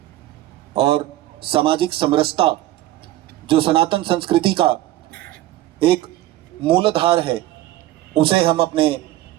और सामाजिक समरसता, जो सनातन संस्कृति का एक मूलाधार है, उसे हम अपने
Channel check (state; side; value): quieter; left; 15.2 dB